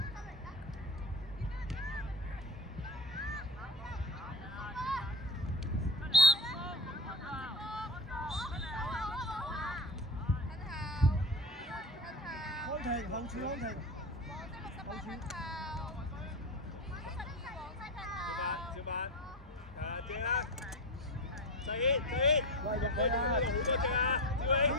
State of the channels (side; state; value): both; normal; correlation 0.22